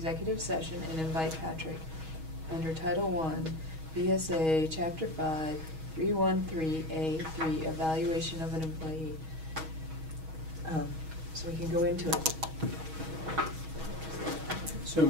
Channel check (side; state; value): left; late; 6.3 ms